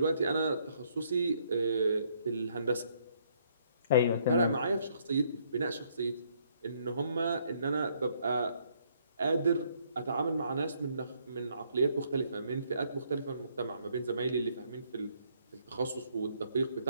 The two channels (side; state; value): both; inverted; correlation -0.69